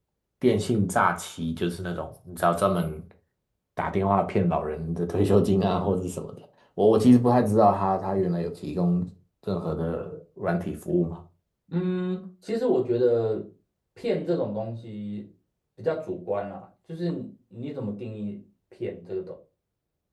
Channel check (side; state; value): both; identical; correlation 1.00